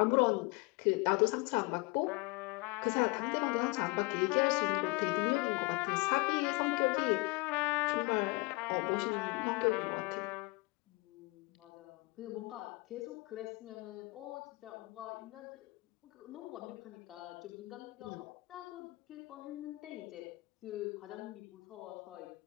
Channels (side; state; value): right; quieter; 25.6 dB